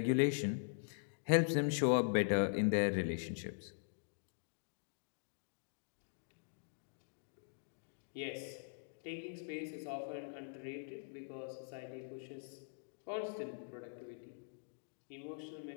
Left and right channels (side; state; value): right; silent; digital silence